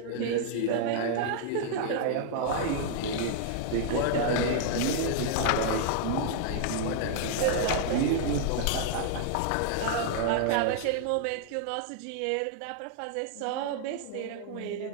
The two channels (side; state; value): both; different; correlation -0.01